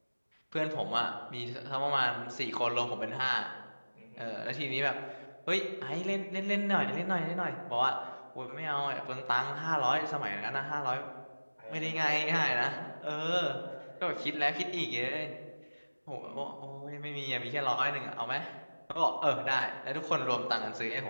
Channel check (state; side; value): inverted; both; correlation -1.00